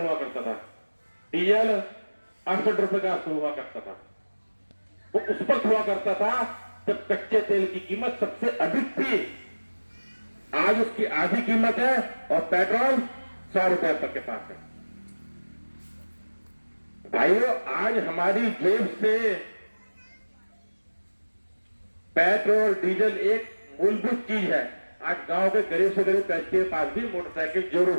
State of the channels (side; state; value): both; inverted; correlation -1.00